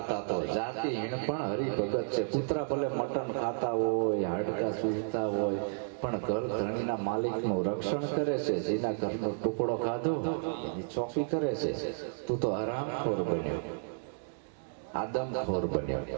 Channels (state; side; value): silent; left; digital silence